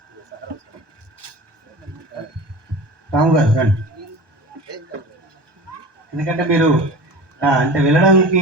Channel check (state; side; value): late; left; 1.2 ms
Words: రాము గారు రండి. ఎందుకంటే మీరు అంటే వెళ్ళడానికి